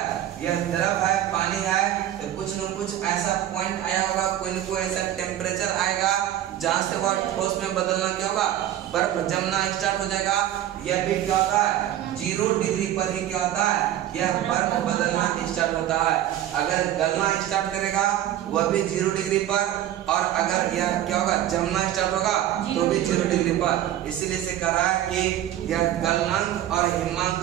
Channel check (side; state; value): left; quieter; 12.3 dB